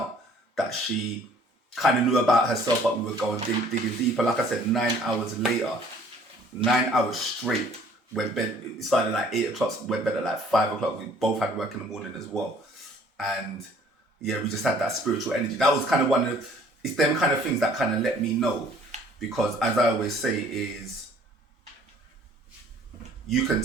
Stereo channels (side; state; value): both; normal; correlation 0.56